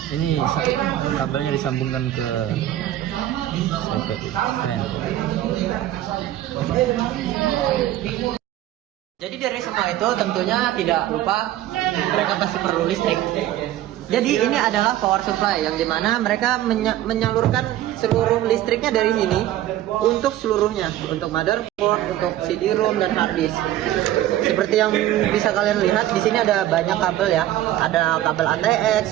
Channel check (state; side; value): quieter; left; 13.4 dB